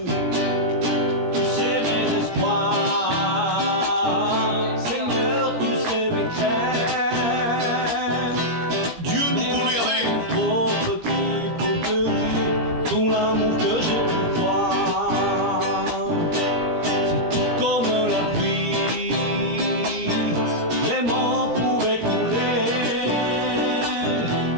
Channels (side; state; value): left; late; 17 ms